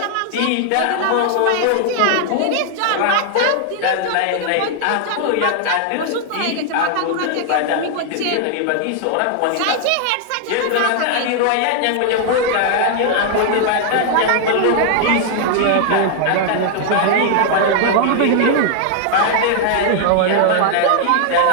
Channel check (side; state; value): both; different; correlation 0.00